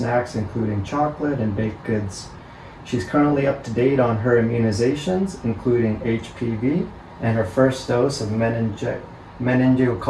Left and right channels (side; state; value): both; identical; correlation 1.00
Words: including chocolate and baked goods. She's currently up to date on her immunizations, including HPV, and her first dose of